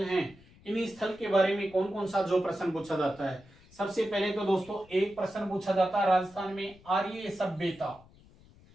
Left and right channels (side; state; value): left; noise; rumble, 25 dB below the sound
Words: हैं, इन स्थल के बारे में कौन कौन सा जो प्रश्न पूछा जाता है। सबसे पहले तो दोस्तों एक प्रश्न पूछा जाता है राजस्थान में आर्य सभ्यता।